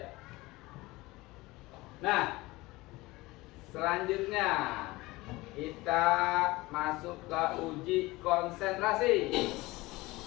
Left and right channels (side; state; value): right; quieter; 20.7 dB